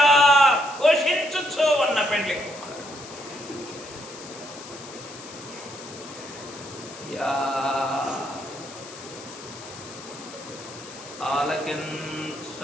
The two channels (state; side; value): noise; left; hiss, 15 dB below the sound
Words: ఘోషించుచు ఉన్న పెండ్లి కుమారుడు. యా